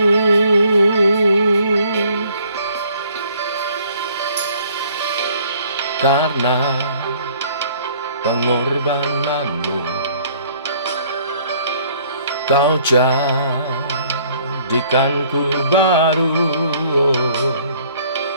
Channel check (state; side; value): inverted; both; correlation -0.59